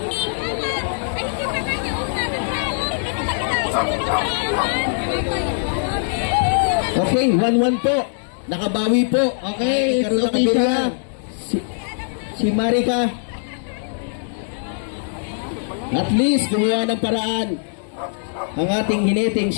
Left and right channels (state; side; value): silent; right; digital silence